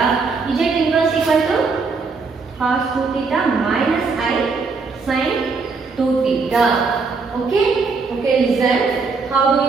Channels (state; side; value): quieter; left; 4.5 dB